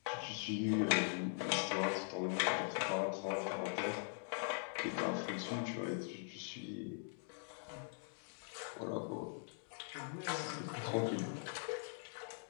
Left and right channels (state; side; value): silent; right; digital silence